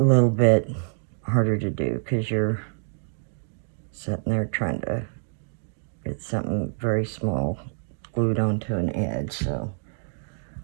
bit harder to do because you're sitting there trying to get something very small glued onto an edge. So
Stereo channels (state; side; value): silent; left; digital silence